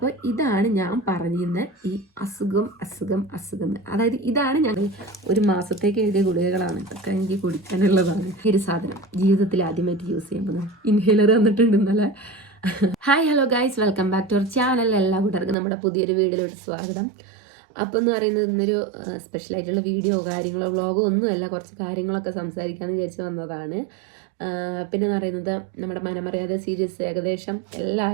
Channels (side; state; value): left; drops out; at 15.6 s